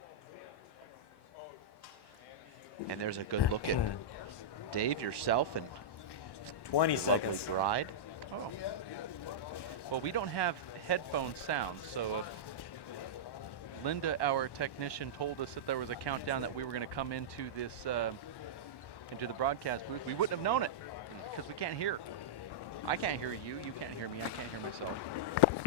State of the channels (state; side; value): late; right; 1.1 ms